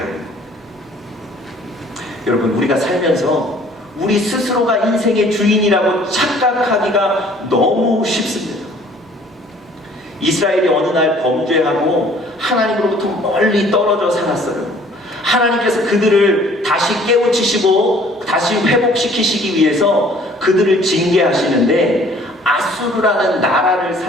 거예요. 여러분, 우리가 살면서 우리 스스로가 인생의 주인이라고 착각하기가 너무 쉽습니다. 이스라엘이 어느 날 범죄하고 하나님으로부터 멀리 떨어져 살았어요. 하나님께서 그들을 다시 깨우치시고 다시 회복시키시기 위해서 그들을 징계하시는데 아수르라는 나라를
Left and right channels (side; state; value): both; normal; correlation 0.55